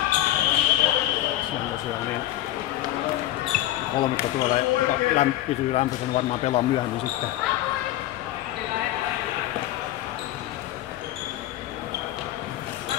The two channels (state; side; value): quieter; right; 14.4 dB